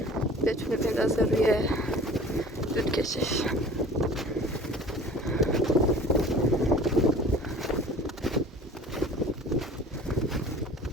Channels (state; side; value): normal; both; correlation 0.44